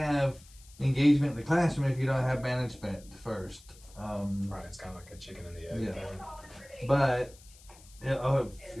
engagement in the classroom if you don't have management first. Right, it's kind of like a chicken and the egg Yeah. thing. But,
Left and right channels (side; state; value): left; noise; hiss, 24 dB below the sound